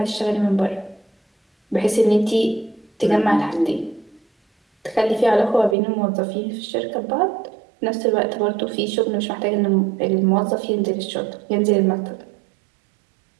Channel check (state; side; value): drops out; left; at 5.8 s